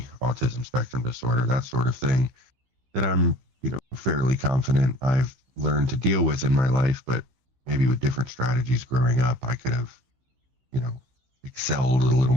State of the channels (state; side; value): late; left; 15 ms